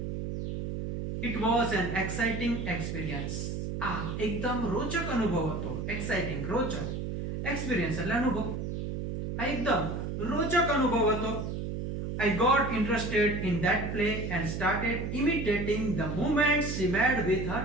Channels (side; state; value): right; noise; hum, 4 dB below the sound